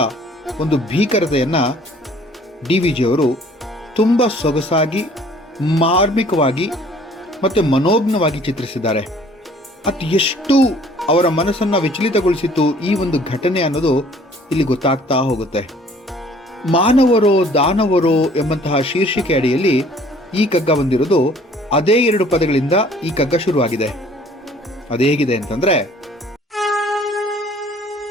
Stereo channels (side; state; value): both; normal; correlation 0.55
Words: ಒಂದು ಭೀಕರತೆಯನ್ನು DVG ಅವರು ತುಂಬ ಸೊಗಸಾಗಿ, ಮಾರ್ಮಿಕವಾಗಿ ಮತ್ತು ಮನೋಜ್ಞವಾಗಿ ಚಿತ್ರಿಸಿದ್ದಾರೆ. ಅದು ಎಷ್ಟು ಅವರ ಮನಸ್ಸನ್ನು ವಿಚಲಿತಗೊಳಿಸಿತ್ತು ಈ ಒಂದು ಘಟನೆ ಅನ್ನೋದು ಇಲ್ಲಿ ಗೊತ್ತಾಗ್ತಾ ಹೋಗುತ್ತೆ. ಮಾನವರೋ ದಾನವರೋ ಎಂಬಂತಹ ಶೀರ್ಷಿಕೆ ಅಡಿಯಲ್ಲಿ ಈ ಕಗ್ಗ ಬಂದಿರೋದು ಅದೇ 2 ಪದಗಳಿಂದ ಈ ಕಗ್ಗ ಶುರುವಾಗಿದೆ. ಅದು ಹೇಗಿದೆ ಅಂತಂದ್ರೆ,